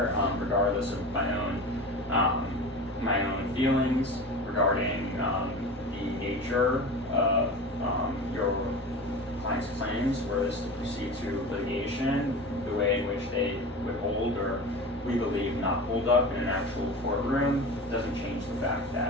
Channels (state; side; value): normal; both; correlation 0.31